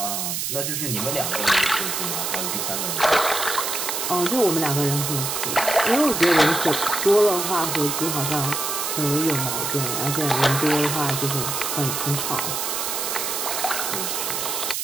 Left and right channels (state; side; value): noise; right; hiss, 2 dB below the sound